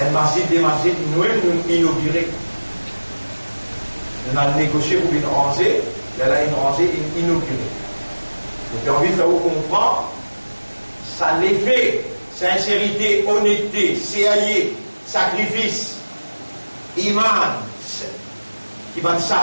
masjid, des masjids, nous inaugurés. On a négocié pour une rangée, là, une rangée inaugurée. Donc, j'ai envie de faire comprendre, ça l'effet, sincérité, honnêteté, sérieux, sacrifice, iman, qui va de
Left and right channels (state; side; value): inverted; both; correlation -1.00